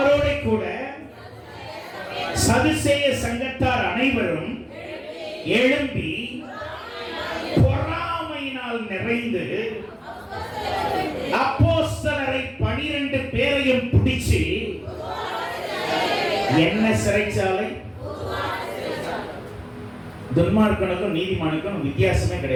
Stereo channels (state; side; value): identical; both; correlation 1.00